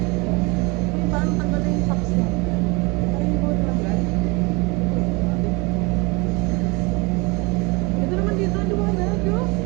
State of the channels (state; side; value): quieter; left; 27.2 dB